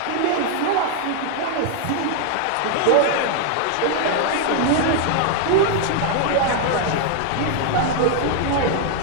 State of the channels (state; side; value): different; both; correlation 0.00